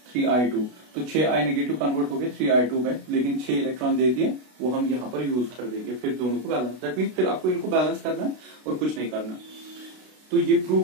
3 I2, तो 6 I नेगेटिव कन्वर्ट हो गए 3 I2 में, लेकिन 6 इलेक्ट्रॉन दे दिए, वो हम यहाँ पर यूज कर देंगे। फिर दोनों को बैलेंस, दैट मीन फिर आपको इनको बैलेंस करना है और कुछ नहीं करना। तो ये प्रूव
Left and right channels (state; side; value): late; left; 32 ms